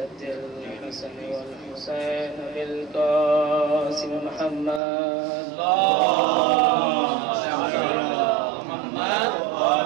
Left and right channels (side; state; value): left; drops out; at 4.8 s